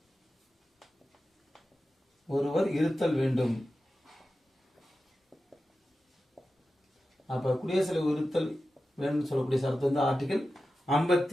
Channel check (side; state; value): both; normal; correlation 0.93